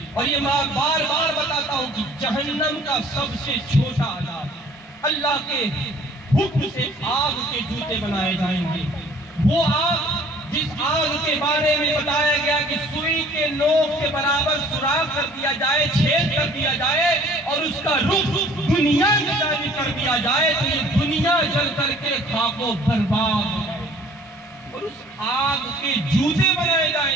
اور یہ میں بار بار بتاتا ہوں کہ جہنم کا سب سے چھوٹا عذاب، اللہ کے حکم سے آگ کے جوتے بنائے جائیں گے۔ وہ آگ جس آگ کے بارے میں بتایا گیا کہ سوئی کے نوک کے برابر سوراخ کر دیا جائے، چھید کر دیا جائے اور اس کا رخ دنیا کی جانب کر دیا جائے تو یہ دنیا جل کر کے خاک و برباد ہو جائے، اور اس آگ کے جوتے بنائے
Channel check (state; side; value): normal; both; correlation 0.53